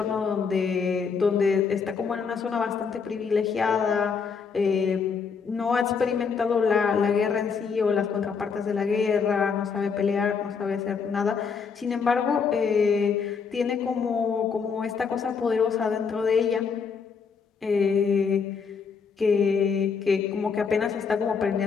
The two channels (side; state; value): right; quieter; 5.8 dB